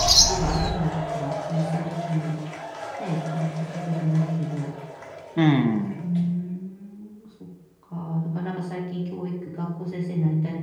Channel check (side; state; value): both; identical; correlation 1.00